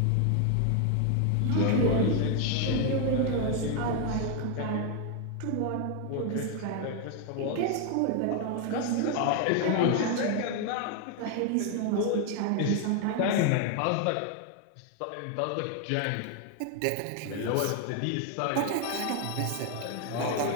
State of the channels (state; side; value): different; both; correlation 0.01